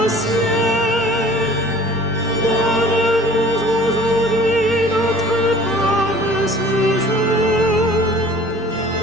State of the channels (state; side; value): normal; both; correlation 0.49